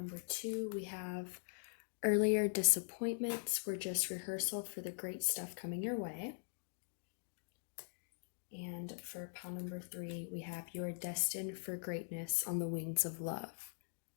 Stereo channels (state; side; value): silent; right; digital silence